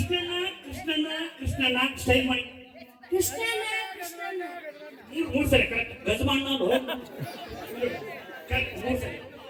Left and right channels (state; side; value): identical; both; correlation 1.00